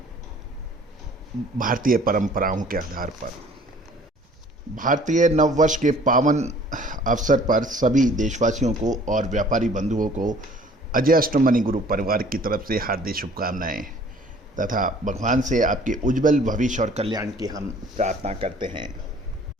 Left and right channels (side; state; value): both; normal; correlation 0.53